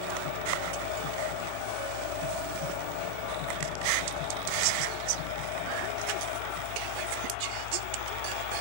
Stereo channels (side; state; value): both; different; correlation 0.01